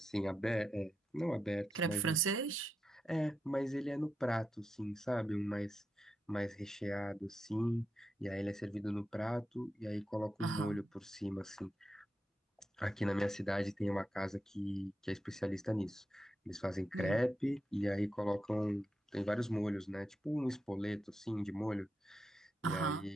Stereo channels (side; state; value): both; normal; correlation 0.86